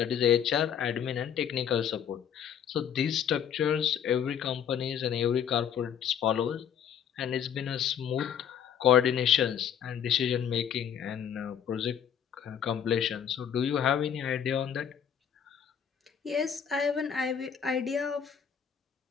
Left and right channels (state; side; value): quieter; right; 8.4 dB